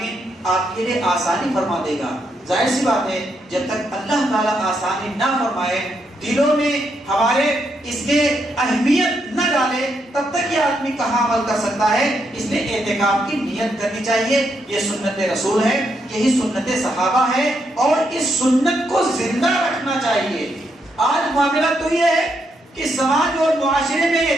آپ کے لیے آسانی فرما دے گا۔ ظاہر سی بات ہے جب تک اللہ تعالیٰ آسانی نہ فرمائے، دلوں میں ہمارے اس کے اہمیت نہ ڈالے، تب تک یہ آدمی کہاں عمل کر سکتا ہے۔ اس لیے اعتکاف کی نیت کرنی چاہیے، یہ سنت رسول ہے، یہی سنت صحابہ ہے، اور اس سنت کو زندہ رکھنا چاہیے۔ آج معاملہ تو یہ ہے کہ سماج اور معاشرے میں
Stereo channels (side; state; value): both; normal; correlation 0.79